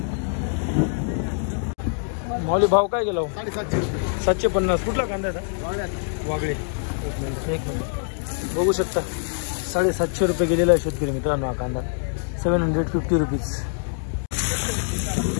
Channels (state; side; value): silent; right; digital silence